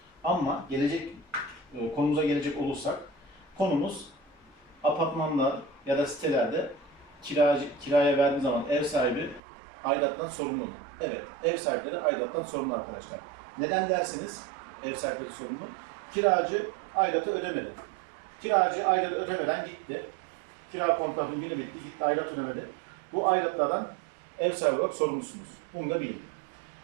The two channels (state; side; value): drops out; left; at 9.4 s